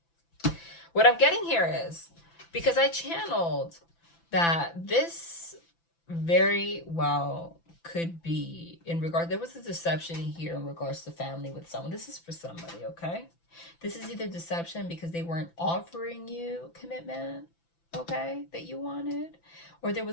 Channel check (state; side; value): late; right; 5.9 ms